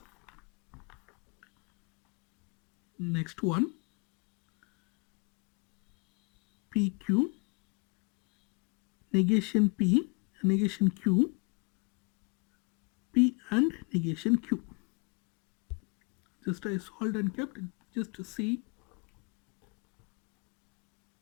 Next one, PQ, negation P, negation Q, P and negation Q. Just I solved and kept, just to see.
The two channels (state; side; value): quieter; right; 33.3 dB